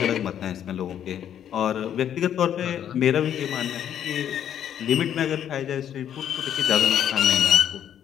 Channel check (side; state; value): right; quieter; 9.8 dB